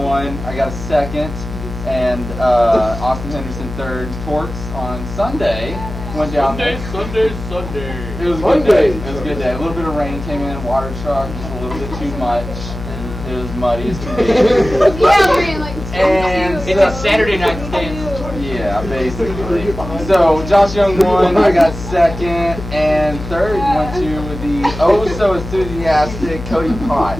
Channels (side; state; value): left; noise; hum, 9 dB below the sound